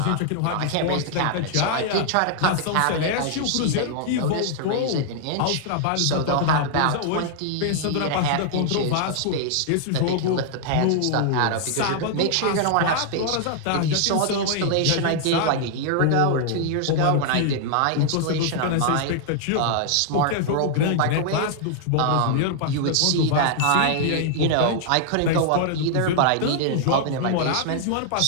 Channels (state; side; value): different; both; correlation 0.00